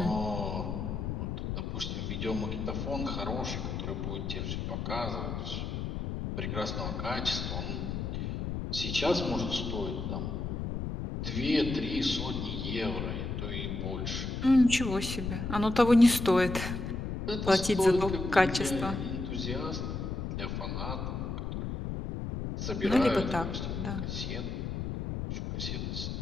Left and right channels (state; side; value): noise; left; rumble, 3 dB below the sound